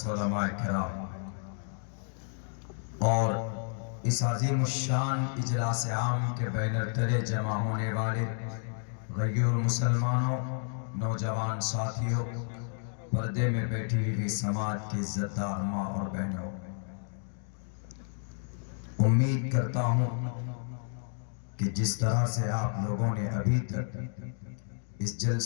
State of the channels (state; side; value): silent; right; digital silence